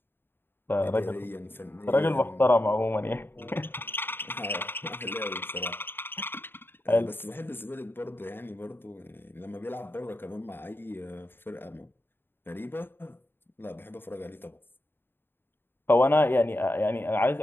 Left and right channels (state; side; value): late; right; 0.10 ms